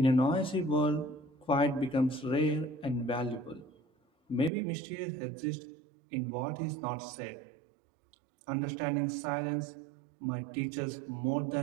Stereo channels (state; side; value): drops out; left; at 4.5 s